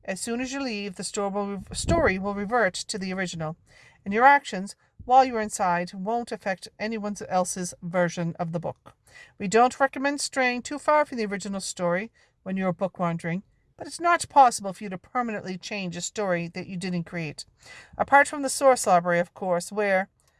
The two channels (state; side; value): identical; both; correlation 1.00